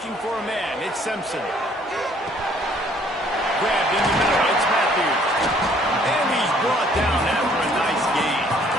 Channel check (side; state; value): both; normal; correlation 0.60